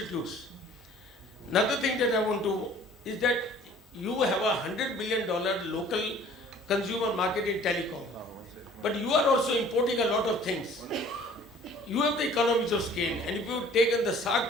Another thing that I want to, is that you have a $100 billion local consumer market in telecom. But you are also importing a lot of things. You have the economies of scale, and if you take in the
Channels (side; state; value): both; normal; correlation 0.51